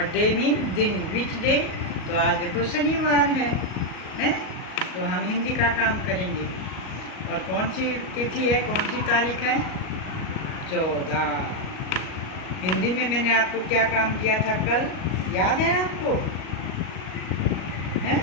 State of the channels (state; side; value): late; right; 38 ms